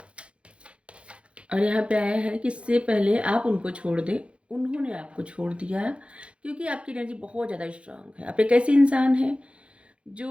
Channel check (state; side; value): late; left; 0.060 ms